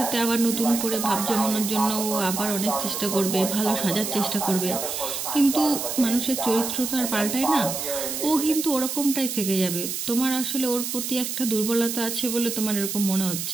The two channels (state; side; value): noise; right; hiss, 4 dB below the sound